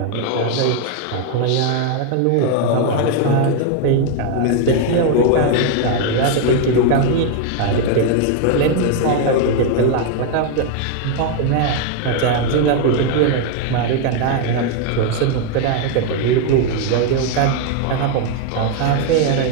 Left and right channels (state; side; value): different; both; correlation 0.01